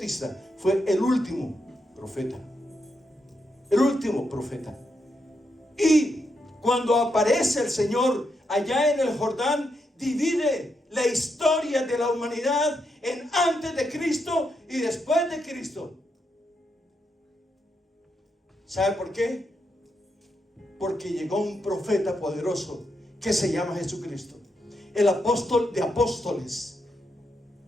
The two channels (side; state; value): both; normal; correlation 0.82